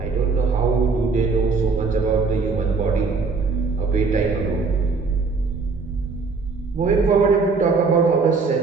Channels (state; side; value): quieter; left; 4.4 dB